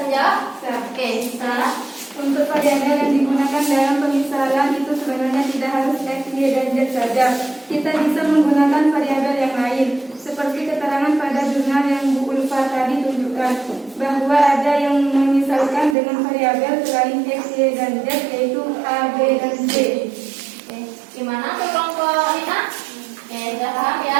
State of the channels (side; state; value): left; drops out; at 16.0 s